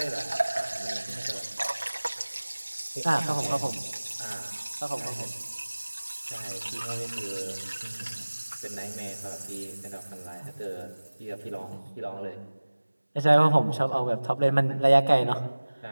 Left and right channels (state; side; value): inverted; both; correlation -1.00